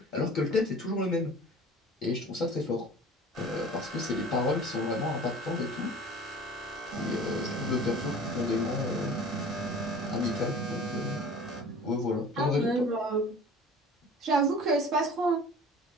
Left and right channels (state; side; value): normal; both; correlation 0.43